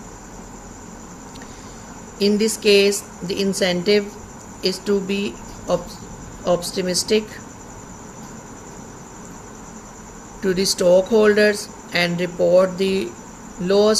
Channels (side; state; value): both; identical; correlation 1.00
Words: In this case, the incentive is to be optimistic to the stockholders and report the